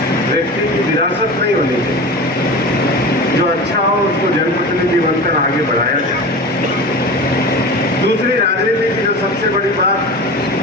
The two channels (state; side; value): normal; both; correlation 0.32